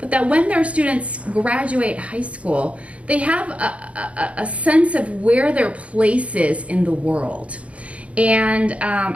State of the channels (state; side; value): late; left; 0.063 ms